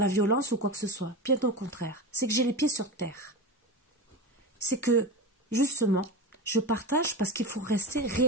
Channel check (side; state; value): both; normal; correlation 0.24